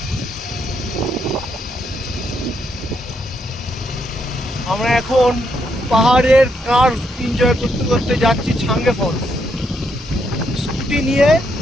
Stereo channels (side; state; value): both; normal; correlation 0.77